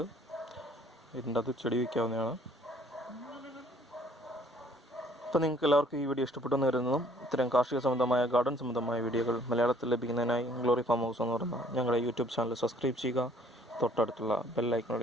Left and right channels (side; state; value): both; normal; correlation 0.59